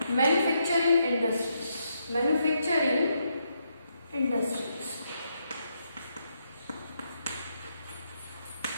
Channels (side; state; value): both; inverted; correlation -0.78